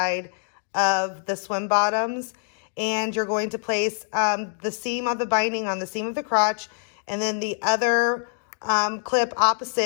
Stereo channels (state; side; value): silent; right; digital silence